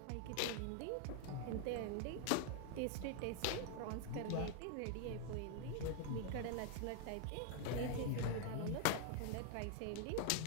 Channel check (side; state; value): both; different; correlation 0.00